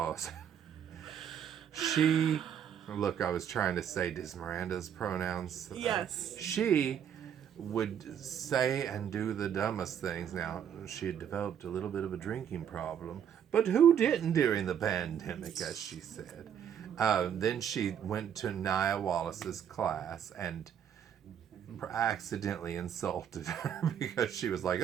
she, look, I was trying to say, does Miranda's pronouns? Yes. She would say and do the dumbest things. Now, she had developed a little bit of a drinking problem, but who didn't during the pandemic, as she said. Then she went to Nia Wallace's class and accidentally insulted her because she was like,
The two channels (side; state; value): left; quieter; 8.8 dB